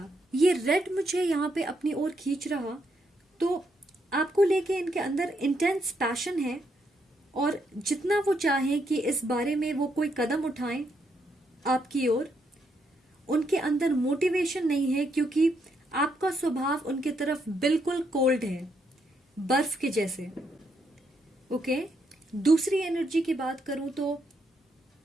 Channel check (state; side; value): normal; both; correlation 0.77